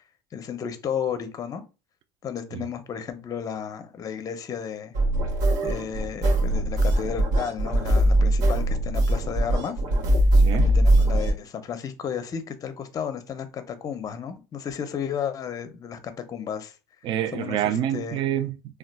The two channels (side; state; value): both; normal; correlation 0.75